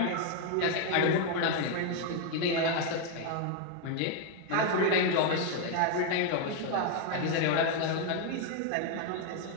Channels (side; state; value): both; different; correlation 0.01